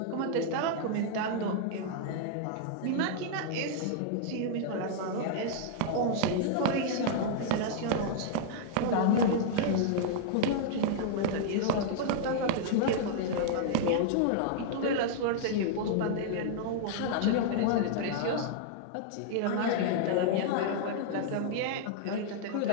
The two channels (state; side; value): different; both; correlation -0.01